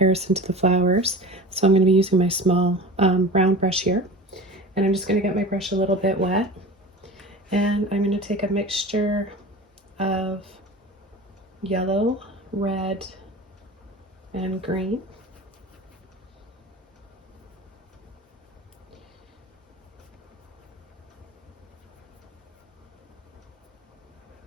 to the flowers. So I'm going to be using my small round brush here. And I'm just going to get my brush a little bit wet. And I'm going to take a mixture of yellow, red, and green.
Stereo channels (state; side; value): normal; both; correlation 0.35